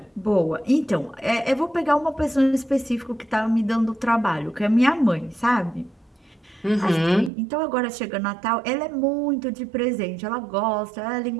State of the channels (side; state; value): left; drops out; at 7.3 s